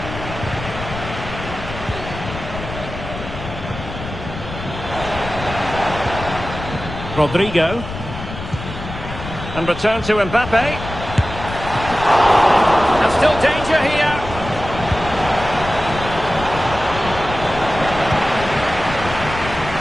Rodrigo. And return to Mbappe. And still danger here.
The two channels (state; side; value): noise; left; rumble, 10 dB below the sound